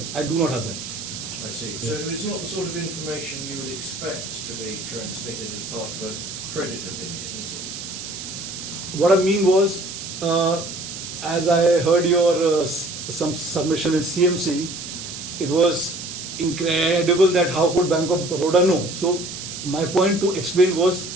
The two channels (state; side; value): noise; right; hiss, 9 dB below the sound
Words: I do not have that. I see. So it's not the sort of information you would expect to be transmitted as part of a credit opinion, is it? What I mean was, as I heard your some submission in CMC, it was incredible that how could Bank of Baroda know. So my point to explain was,